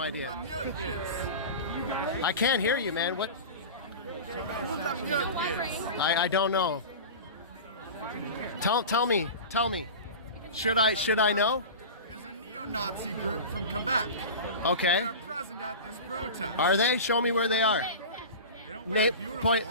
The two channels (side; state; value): both; inverted; correlation -0.31